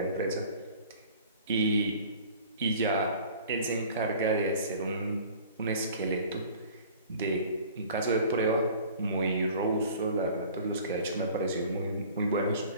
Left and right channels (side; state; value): both; inverted; correlation -0.47